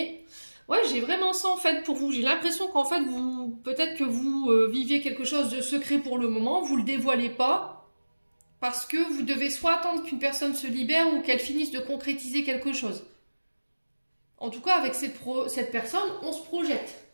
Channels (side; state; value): both; inverted; correlation -1.00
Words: Ouais, j'ai vraiment ça en fait pour vous. J'ai l'impression qu'en fait, peut-être que vous viviez quelque chose de secret pour le moment. Vous le dévoilez pas. Parce que vous devez soit attendre qu'une personne se libère ou qu'elle finisse de concrétiser quelque chose. En tout cas, avec cette personne, on se projette.